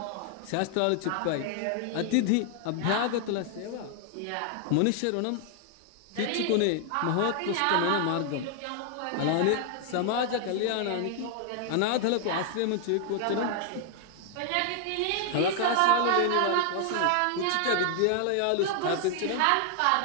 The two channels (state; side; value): different; both; correlation 0.00